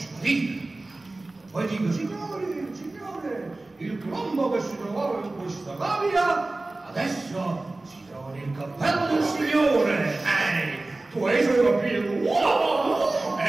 Poi dico, signore, il colombo che si trovava in questa gabbia adesso si trova nel cappello del signore. Tu hai solo capito? Wow!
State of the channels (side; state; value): left; quieter; 3.0 dB